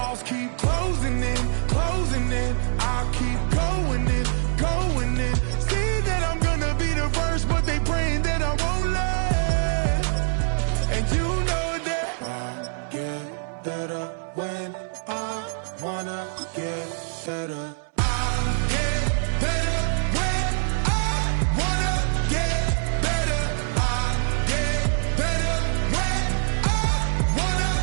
keep closing in, closing in. I keep going in, going in. See that I'm gonna be the first, but they praying that I won't let. And you know that I get better when I wanna get better. I get better when I wanna get better. I get better when I wanna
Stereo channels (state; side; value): silent; left; 62 dB below the other